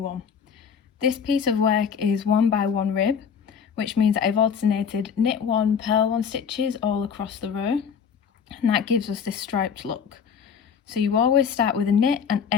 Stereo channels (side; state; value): right; quieter; 6.9 dB